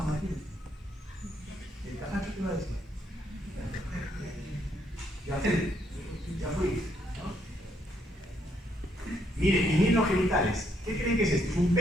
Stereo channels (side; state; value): both; normal; correlation 0.73